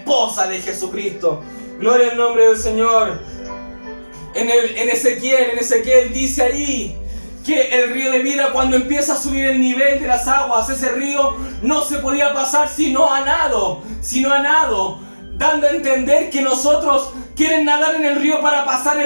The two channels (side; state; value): both; inverted; correlation -1.00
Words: de Jesucristo. Gloria al nombre del Señor. En Ezequiel dice ahí que el río de vida, cuando empieza a subir el nivel de las aguas, ese río no se podía pasar sino a nado, dando a entender que nosotros quieren nadar en el río para pasar